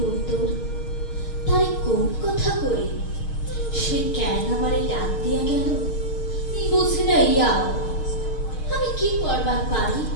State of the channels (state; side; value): late; right; 6.4 ms